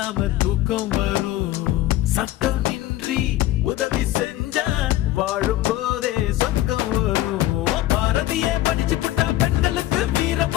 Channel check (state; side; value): quieter; right; 15.0 dB